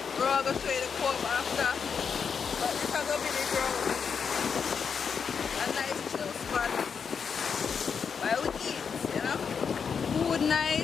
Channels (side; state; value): right; quieter; 6.4 dB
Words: We're all going to show you the co-op after, but this is going to be the ground. A nice chill spot while we eat, you know. Food